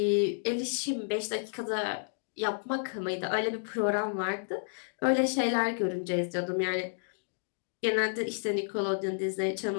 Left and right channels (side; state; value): right; silent; digital silence